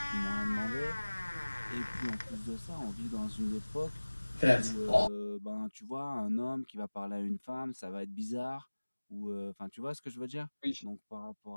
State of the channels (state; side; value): inverted; both; correlation -1.00